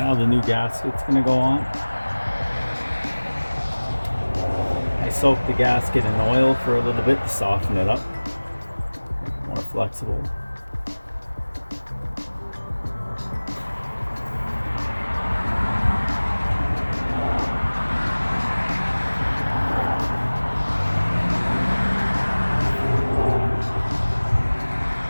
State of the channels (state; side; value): inverted; both; correlation -1.00